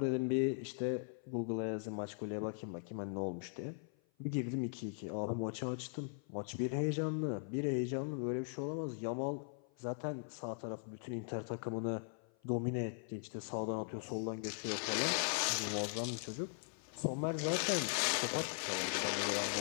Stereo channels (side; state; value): right; silent; 51 dB below the other